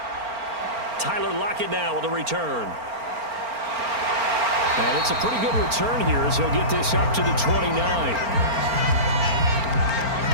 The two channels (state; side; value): late; left; 4.4 ms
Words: Tyler Lockett now with a return. And it's a pretty good return here as he'll get this up to the 29.